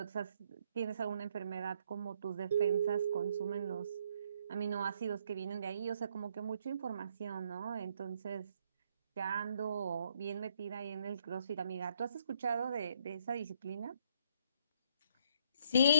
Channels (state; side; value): inverted; both; correlation -0.68